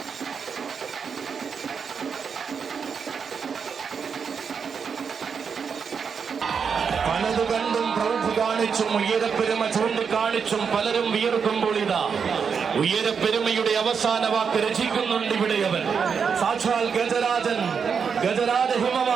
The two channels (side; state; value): left; quieter; 6.3 dB